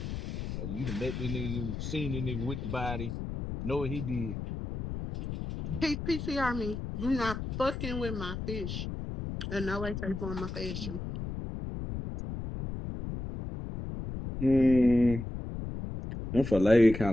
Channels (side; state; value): left; noise; rumble, 6 dB below the sound